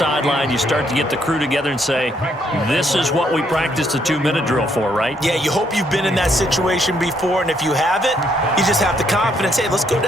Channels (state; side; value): normal; both; correlation 0.72